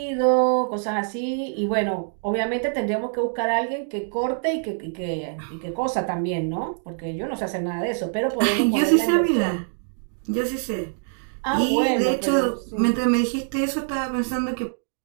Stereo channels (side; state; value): left; silent; digital silence